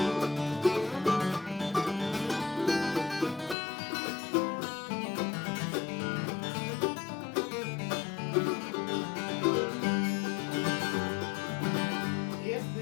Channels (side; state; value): right; drops out; at 3.6 s